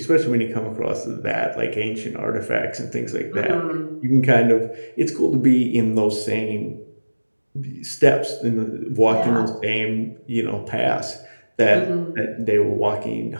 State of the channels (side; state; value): both; inverted; correlation -1.00